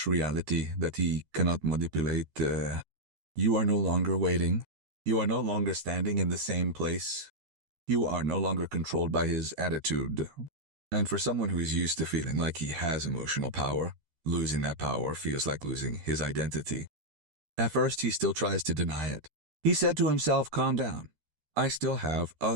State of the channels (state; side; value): late; left; 13 ms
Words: reality that he cannot manipulate. You are no longer waiting. You are no longer standing in the same place. You are no longer controlled by his attitude. And for someone who is used to feeling like he has emotional power, losing that power feels like losing his identity. At first, he still tries to deny it. He said to himself, calm down. I still have